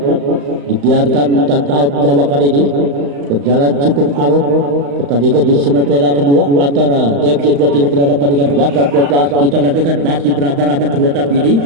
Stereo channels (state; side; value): late; left; 35 ms